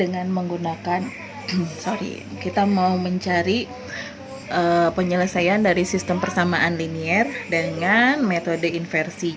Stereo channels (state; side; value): identical; both; correlation 1.00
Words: menggunakan kita mau mencari penyelesaian dari sistem persamaan linier dengan metode inversi.